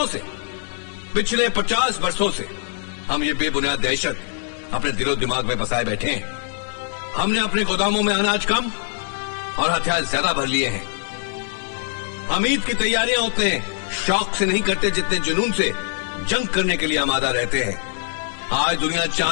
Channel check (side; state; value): right; silent; digital silence